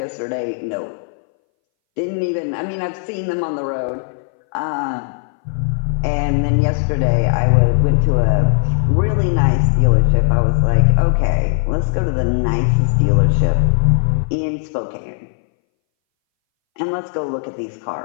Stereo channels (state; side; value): silent; right; 63 dB below the other